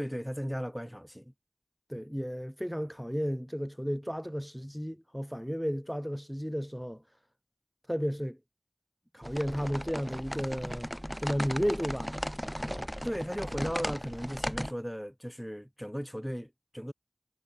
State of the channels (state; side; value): identical; both; correlation 1.00